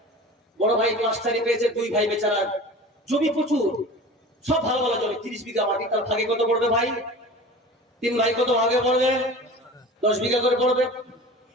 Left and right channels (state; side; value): normal; both; correlation 0.38